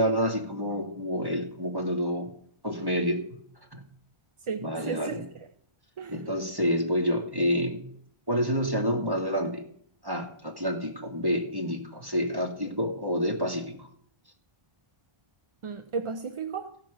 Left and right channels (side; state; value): left; late; 1.1 ms